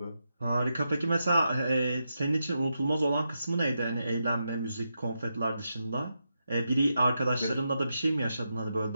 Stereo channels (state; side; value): inverted; both; correlation -0.86